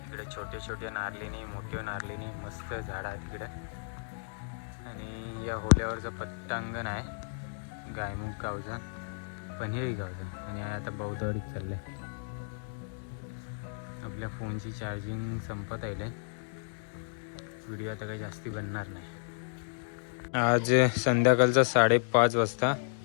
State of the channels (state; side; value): silent; right; digital silence